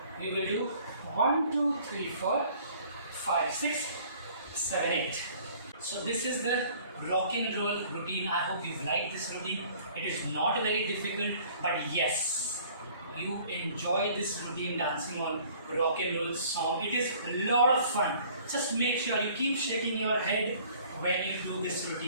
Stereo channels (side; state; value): both; inverted; correlation -0.54